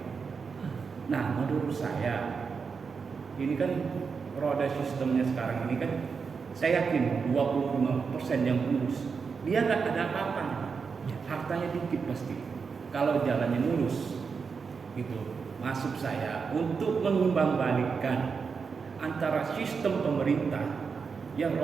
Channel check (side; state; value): left; quieter; 5.5 dB